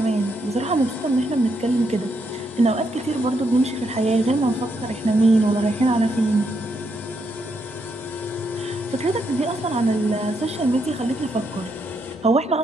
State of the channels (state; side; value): normal; both; correlation 0.78